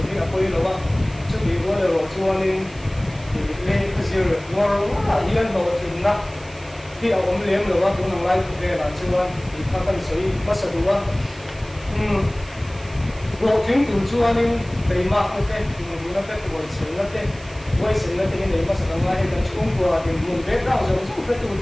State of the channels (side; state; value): right; noise; hiss, 23 dB below the sound